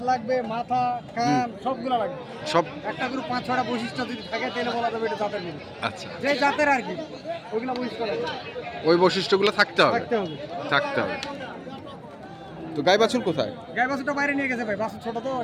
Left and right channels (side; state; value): both; identical; correlation 1.00